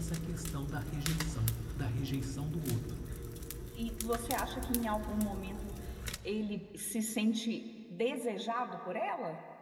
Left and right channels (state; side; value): identical; both; correlation 1.00